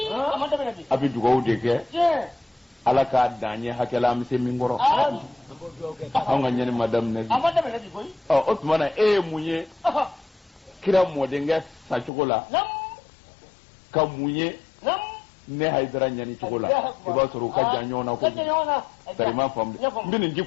abi dugaw de ke ala ka danye hakela am se mingoro an ga nyani madamina bi koy o Usmana munye kira mode nga sa chugola ka munye ne haydara nyani chugola iba soro ka janyo na ko tarima fam mbini nji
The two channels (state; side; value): drops out; right; at 12.1 s